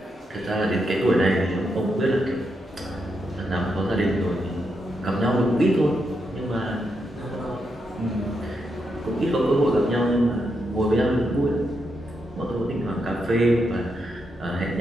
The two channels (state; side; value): normal; both; correlation 0.83